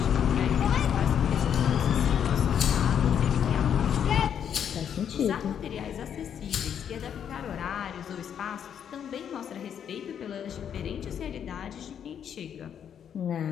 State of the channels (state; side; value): quieter; right; 8.6 dB